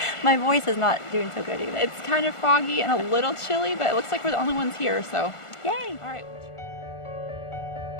My voice is not doing so good either. It's kind of foggy and a little chilly, but it looks like we're the only ones here, so yay! All right.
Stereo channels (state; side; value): late; right; 1.4 ms